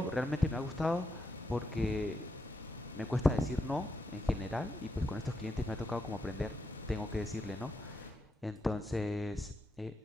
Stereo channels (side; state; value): both; normal; correlation 0.83